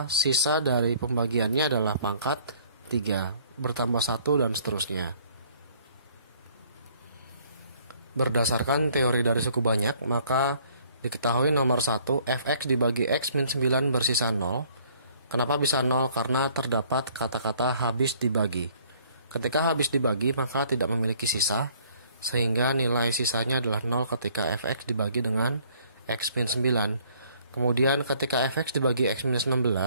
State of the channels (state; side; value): inverted; both; correlation -0.60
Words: sisa dari pembagiannya adalah pangkat 3, bertambah 1 dan seterusnya. Berdasarkan teori dari suku banyak, maka diketahui nomor 1, fx dibagi x min 9 bersisa 0. Kenapa bisa 0? Karena terdapat kata-kata habis dibagi. Ketika habis dibagi, maka tidak memiliki sisa, sehingga nilai sisanya adalah 0 ketika fx dibagi dengan x min 9. Kemudian ketika fx dibagi x minus